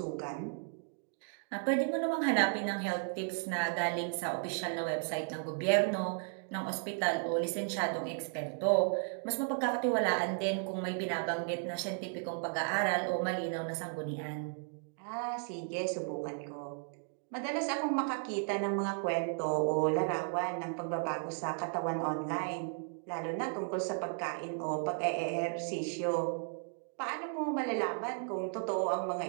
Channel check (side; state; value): left; silent; 55 dB below the other